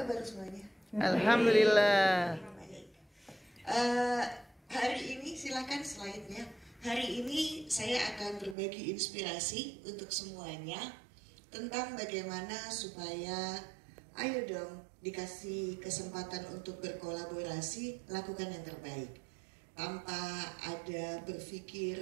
semuanya? Alhamdulillah. Hari ini silakan slide-nya. Hari ini saya akan berbagi inspirasi untuk semuanya tentang bagaimana supaya, ayo dong, dikasih kesempatan untuk berkolaborasi, lakukan yang terbaik. Tanpa ada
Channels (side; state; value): left; drops out; at 8.6 s